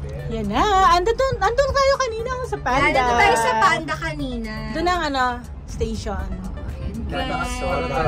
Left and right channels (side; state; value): both; identical; correlation 1.00